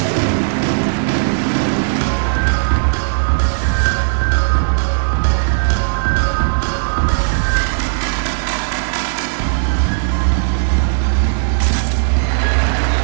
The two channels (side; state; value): left; silent; digital silence